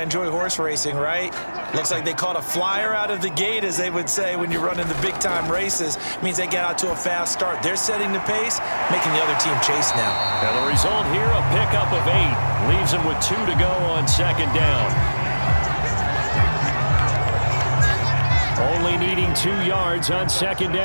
horse racing, right? Looks like they caught a flyer out of the gate, as they would say when you're running the big-time races. Means they get out to a fast start. They're setting the pace, making the other team chase now. Now the result here, a pickup of 8. Leaves them with 2 to go on 2nd down. Only needing 2 yards on 2nd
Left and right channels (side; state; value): both; inverted; correlation -1.00